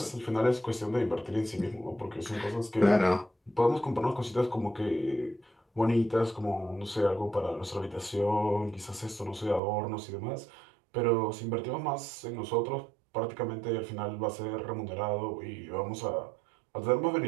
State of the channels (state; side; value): drops out; left; at 9.6 s